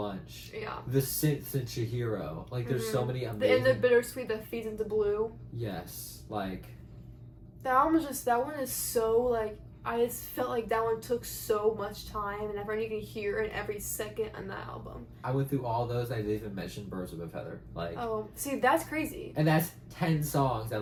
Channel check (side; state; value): both; identical; correlation 1.00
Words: the synths in Chihiro. Like there's so many amazing. And the bittersweet that feeds into Blue. Yes, like. The album is just, that one is so like, I just felt like that one took so much time, and everyone you can hear it every second on that album. I went through all those. I didn't even mention Birds of a Feather. Like, oh, see, that's crazy. And that's 10 songs. I